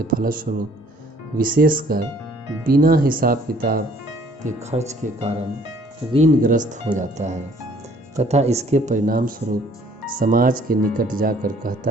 फलस्वरूप विशेषकर बिना हिसाब किताब के खर्च के कारण ऋणग्रस्त हो जाता है तथा इसके परिणाम स्वरूप समाज के निकट जाकर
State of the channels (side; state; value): both; normal; correlation 0.58